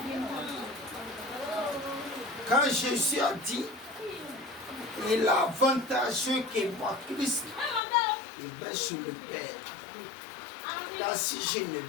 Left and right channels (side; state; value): right; drops out; at 7.8 s